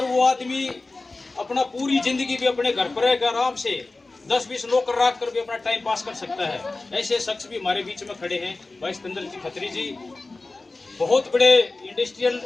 वो आदमी अपना पूरी जिंदगी भी अपने घर पर रहकर आराम से 10-20 नौकर रख कर भी अपना टाइम पास कर सकता है, ऐसे शख्स भी हमारे बीच में खड़े हैं। भाई सिकंदर जी खत्री जी बहुत बड़े इंडस्ट्रियल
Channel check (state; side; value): quieter; right; 3.3 dB